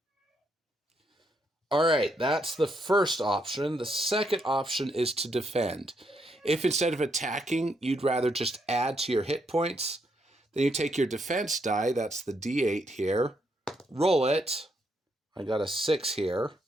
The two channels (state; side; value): normal; both; correlation 0.76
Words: All right, that's the first option. The second option is to defend. If instead of attacking, you'd rather just add to your hit points, then you take your defense die, that's the D8 here, roll it. I got a 6 here.